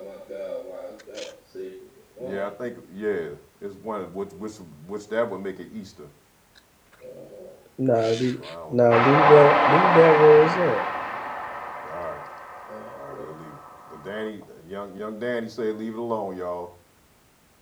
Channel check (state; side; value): identical; both; correlation 1.00